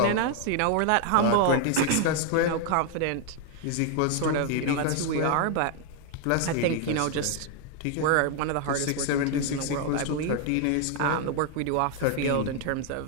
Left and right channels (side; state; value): both; different; correlation 0.00